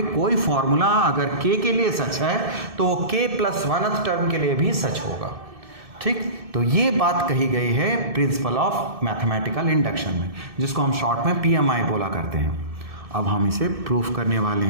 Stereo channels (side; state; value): left; late; 1.7 ms